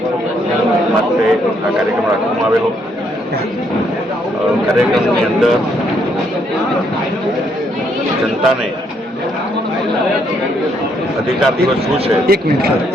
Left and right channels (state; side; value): normal; both; correlation 0.72